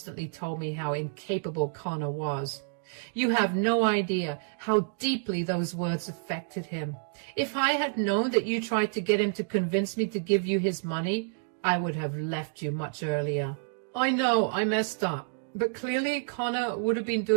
told me how incapable Connor was. You have no idea how deeply those words affected him. If I had known that you tried to get him to convince me to give you his money, I would have left you much earlier. I know I messed up, but clearly Connor would have been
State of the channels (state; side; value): silent; left; digital silence